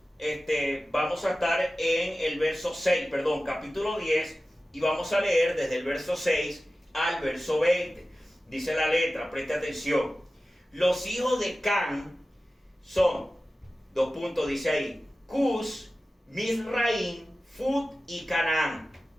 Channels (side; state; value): both; normal; correlation 0.95